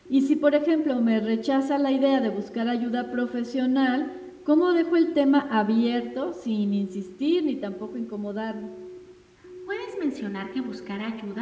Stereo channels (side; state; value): both; identical; correlation 1.00